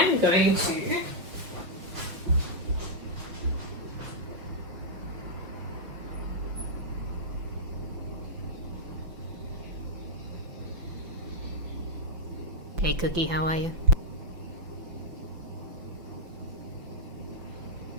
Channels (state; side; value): late; left; 5.9 ms